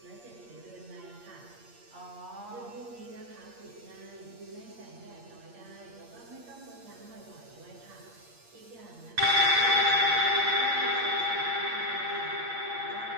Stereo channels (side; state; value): left; late; 8.6 ms